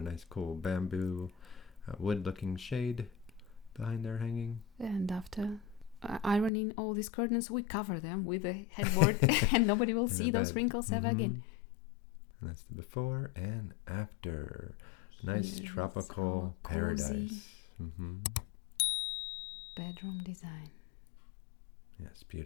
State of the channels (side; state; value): right; drops out; at 6.5 s